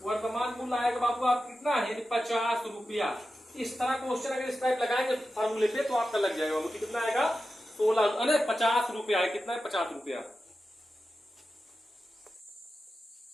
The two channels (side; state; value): both; normal; correlation 0.92